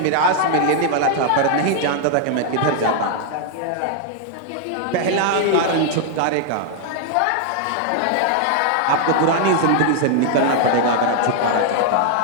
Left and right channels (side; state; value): both; different; correlation 0.00